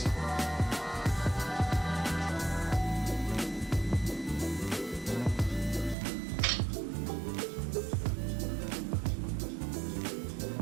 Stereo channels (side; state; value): left; drops out; at 6.0 s